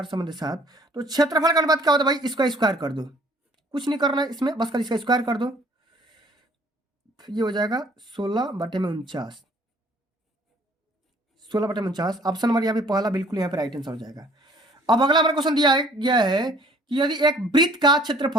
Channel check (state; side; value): normal; both; correlation 0.56